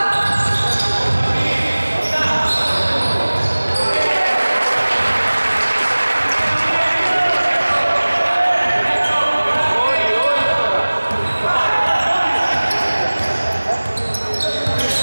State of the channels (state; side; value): inverted; both; correlation -1.00